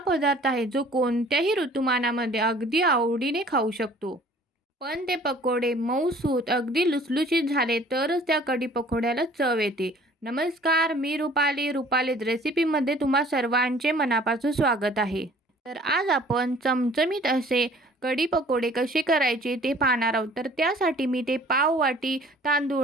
आहे जो कोणत्याही ऋतुमानामध्ये अगदी आवडीने खाऊ शकतो. पण ते पकोडे मऊसूत अगदी लुसलुशीत झाले तरच त्या कढी पकोड्याला चव येते. नमस्कार, मी रुपालीज रेसिपीमध्ये तुम्हा सर्वांचे मनापासून स्वागत आहे. तर आज आपण चमचमीत असे कढी पकोडे कसे करायचे ते पाहणार आहोत. तर त्यासाठी मी ते पाव वाटी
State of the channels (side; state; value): both; normal; correlation 0.52